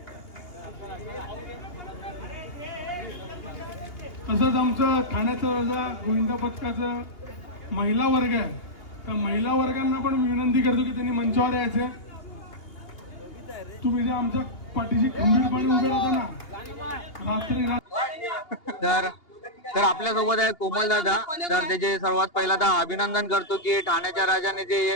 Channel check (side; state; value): right; late; 2.8 ms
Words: तसंच आमचं ठाण्याचा राजा गोविंदा पथकाचं महिला वर्ग आहे. त्या महिला वर्गांना पण मी विनंती करतो की त्यांनी मंचावर यायचे. तुम्ही जे आमच्या पाठीशी खंबीरपणे उभे राहता ना रात्री. तर आपल्या सोबत आहे कोमल दादा. तर त्याचे सर्वात पहिल्यांदा अभिनंदन करतो की ठाण्याच्या राजाने जे